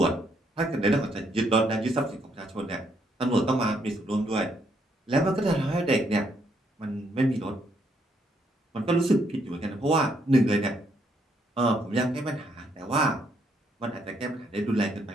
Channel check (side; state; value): both; normal; correlation 0.73